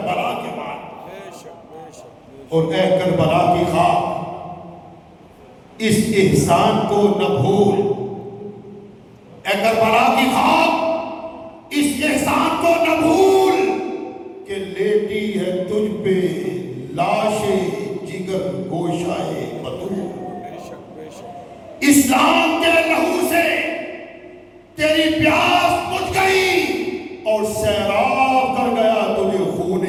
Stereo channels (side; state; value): both; identical; correlation 1.00